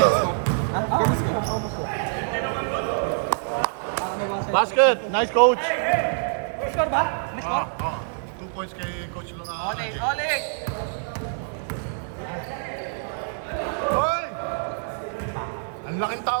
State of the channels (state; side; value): silent; left; 58 dB below the other